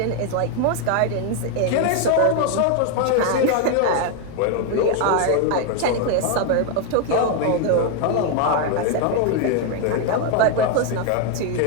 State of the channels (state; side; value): different; both; correlation 0.01